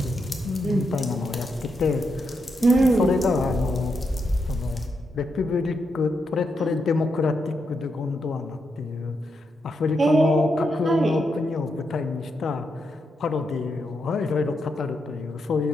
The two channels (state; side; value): normal; both; correlation 0.83